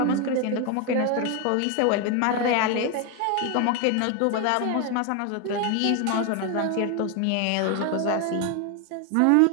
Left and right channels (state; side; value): different; both; correlation 0.01